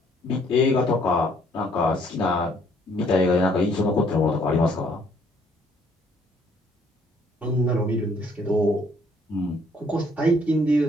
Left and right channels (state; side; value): normal; both; correlation 0.64